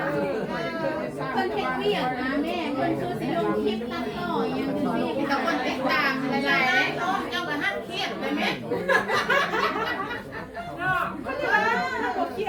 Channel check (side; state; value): both; identical; correlation 1.00